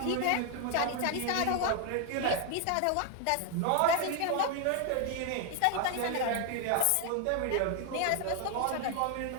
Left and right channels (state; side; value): different; both; correlation 0.01